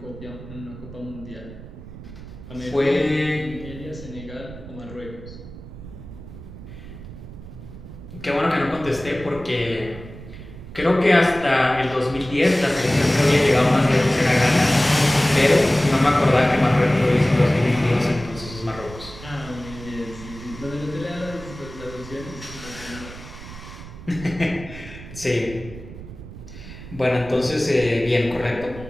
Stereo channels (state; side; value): noise; right; rumble, 14 dB below the sound